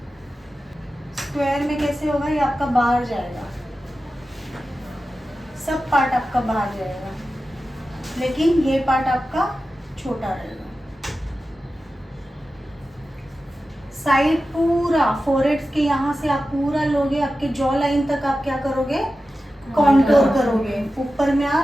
स्क्वायर में कैसे होगा, ये आपका बाहर जाएगा, सब पार्ट आपका बाहर जाएगा, लेकिन ये पार्ट आपका छोटा रहेगा। साइड पूरा फोरहेड के यहाँ से आप पूरा लोगे, आपके जॉ लाइन तक आप क्या करोगे, कॉन्टोर करोगे। ऊपर में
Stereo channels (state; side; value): normal; both; correlation 0.93